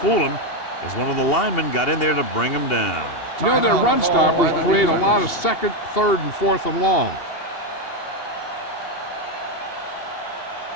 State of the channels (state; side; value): late; right; 2.8 ms